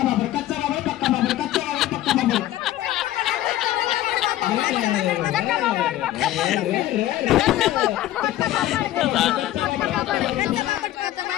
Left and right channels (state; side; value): quieter; right; 14.1 dB